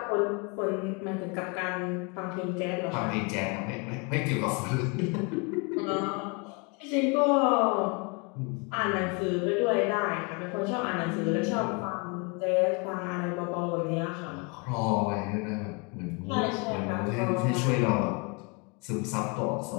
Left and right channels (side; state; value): right; quieter; 31.5 dB